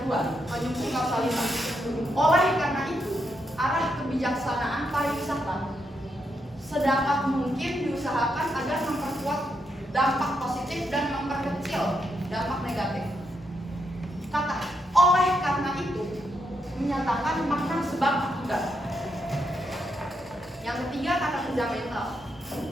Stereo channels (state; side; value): normal; both; correlation 0.81